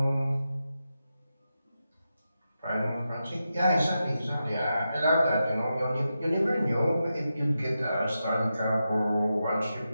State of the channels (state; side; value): inverted; both; correlation -0.89